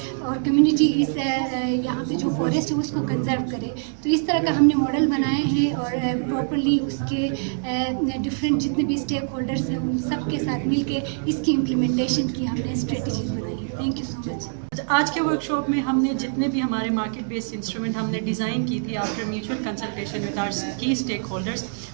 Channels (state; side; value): silent; left; digital silence